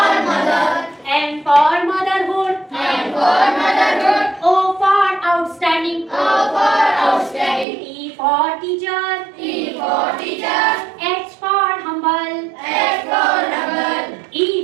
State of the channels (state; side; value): drops out; left; at 7.7 s